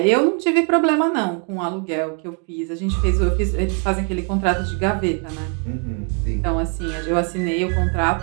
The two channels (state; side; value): quieter; left; 39.3 dB